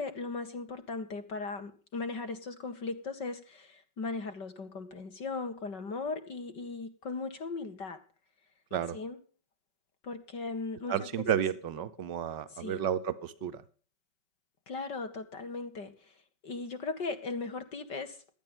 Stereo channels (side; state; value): right; late; 5.3 ms